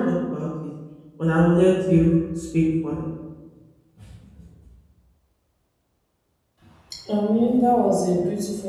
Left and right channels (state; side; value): identical; both; correlation 1.00